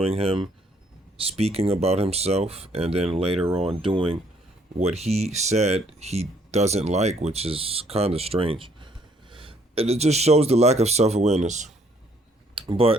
him speaking about himself, and then later on doing what he said he doesn't like, which is kind of strange. And it just shows the lack of self-awareness.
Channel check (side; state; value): both; normal; correlation 0.65